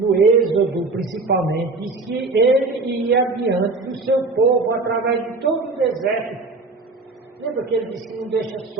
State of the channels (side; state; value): left; quieter; 3.6 dB